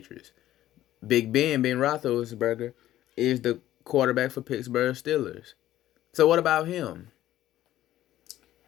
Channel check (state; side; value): quieter; right; 13.6 dB